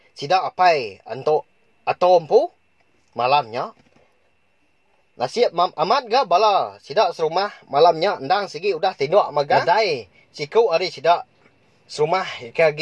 Sidak apai anto atom pu malamnya. Nasiap amat ga bala sidak serumah malamnya endang segi udah tindak magadai siku ari sidak serumah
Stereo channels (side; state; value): both; identical; correlation 1.00